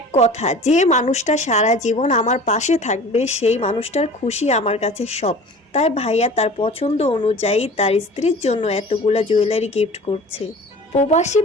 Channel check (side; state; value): both; normal; correlation 0.42